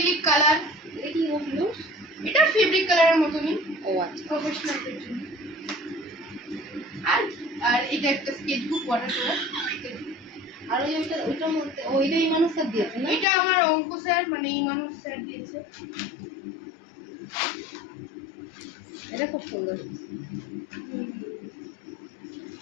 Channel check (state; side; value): drops out; right; at 13.2 s